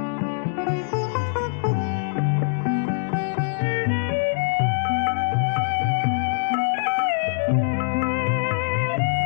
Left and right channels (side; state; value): right; silent; digital silence